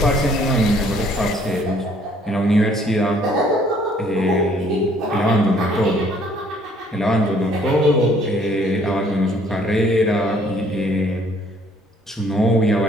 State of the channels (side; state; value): both; normal; correlation 0.61